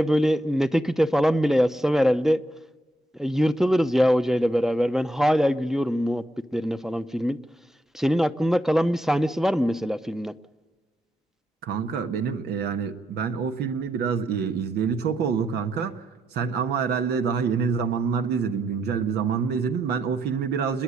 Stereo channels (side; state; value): both; normal; correlation 0.79